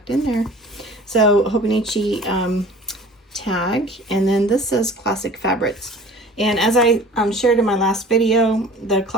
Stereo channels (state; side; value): normal; both; correlation 0.44